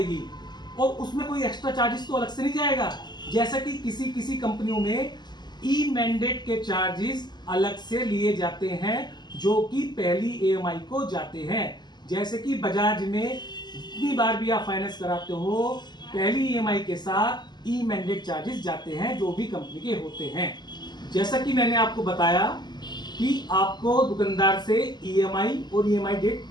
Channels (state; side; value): late; right; 0.21 ms